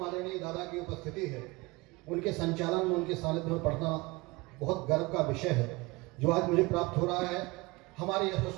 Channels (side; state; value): left; quieter; 24.1 dB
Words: आदरणीय दादा की उपस्थिति है, उनके संचालन में, उनके सानिध्य में पढ़ना बहुत गर्व का विषय है जो आज मुझे प्राप्त हो रहा है। हमारे